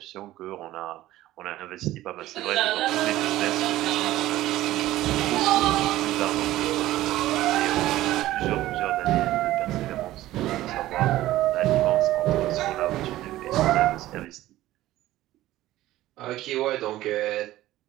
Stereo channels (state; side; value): quieter; left; 15.4 dB